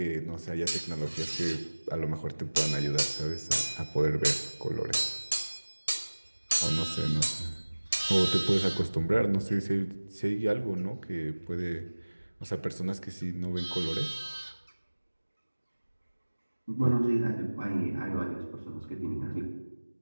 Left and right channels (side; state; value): both; inverted; correlation -1.00